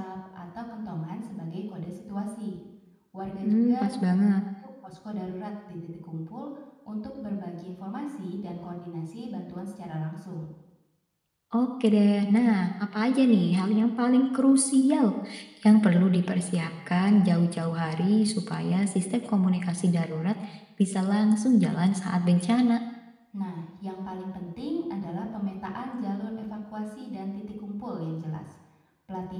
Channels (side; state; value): both; identical; correlation 1.00